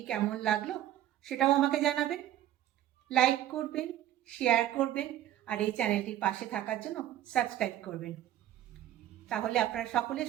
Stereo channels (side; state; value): left; quieter; 12.7 dB